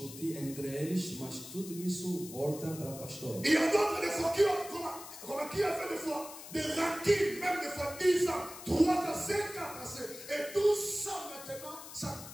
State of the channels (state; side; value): noise; left; hiss, 13 dB below the sound